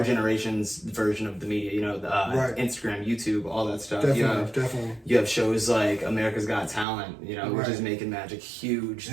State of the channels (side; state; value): left; drops out; at 6.9 s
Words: generation's version of the media, Instagram, YouTube, all that stuff. Definitely. You have shows like America's Got Talent, which is making magic huge.